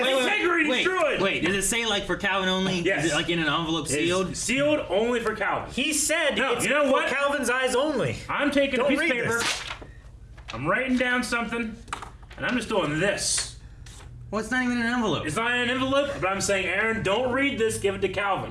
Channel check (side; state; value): both; identical; correlation 1.00